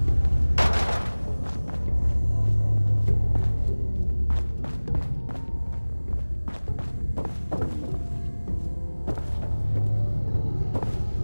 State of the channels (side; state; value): both; inverted; correlation -1.00